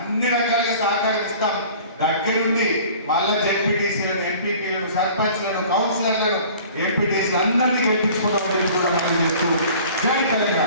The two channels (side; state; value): both; inverted; correlation -0.47